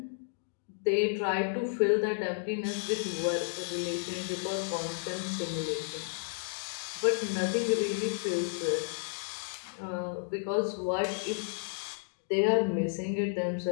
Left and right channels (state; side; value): silent; right; digital silence